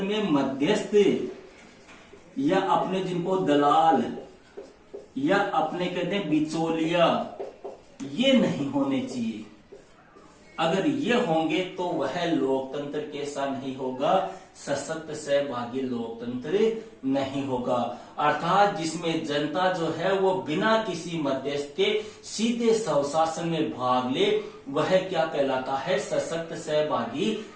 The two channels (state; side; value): identical; both; correlation 1.00